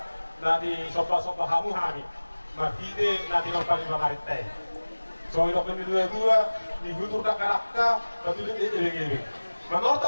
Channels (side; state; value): both; inverted; correlation -1.00